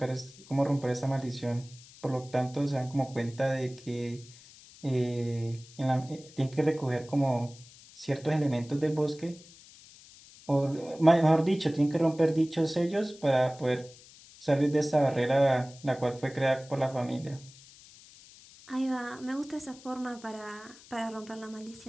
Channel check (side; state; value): left; noise; hiss, 22 dB below the sound